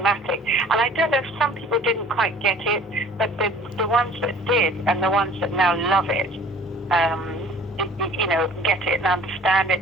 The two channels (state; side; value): normal; both; correlation 0.49